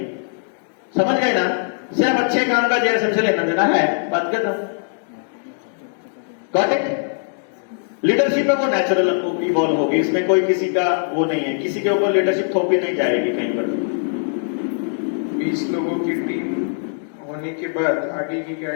समझ गए ना? सिर्फ अच्छे काम का जेएसएम से लेना देना है। बात कर रहा हूं, गॉट इट? लीडरशिप है वो नेचुरल इवॉल्व होगी, इसमें कोई किसी का वो नहीं है, किसी के ऊपर लीडरशिप थोपी नहीं जाएगी कहीं पर। 20 लोगों की टीम होने के बाद आगे की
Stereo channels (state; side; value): silent; right; digital silence